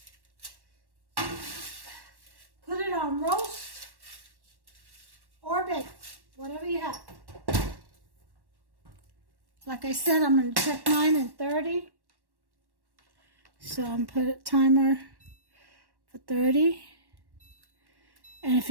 Put it on roast or bake, whatever you have. Like I said, I'm going to check mine in 30. So I'm going to put a timer for 30. And if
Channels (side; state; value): left; late; 1.1 ms